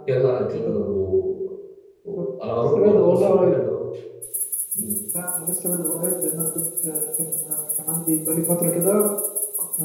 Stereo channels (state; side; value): identical; both; correlation 1.00